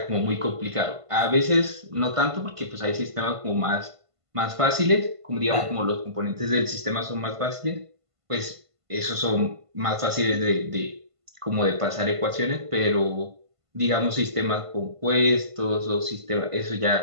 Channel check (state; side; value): late; left; 1.5 ms